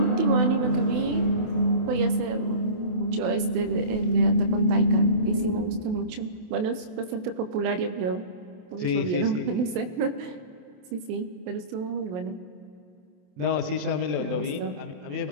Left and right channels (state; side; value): late; left; 28 ms